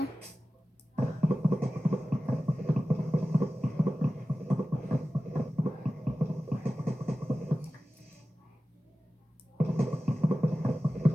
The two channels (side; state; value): both; normal; correlation 0.95